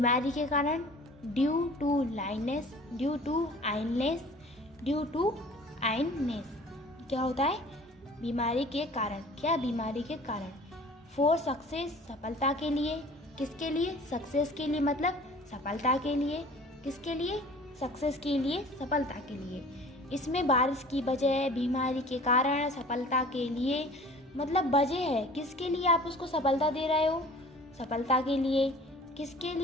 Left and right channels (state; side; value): normal; both; correlation 0.46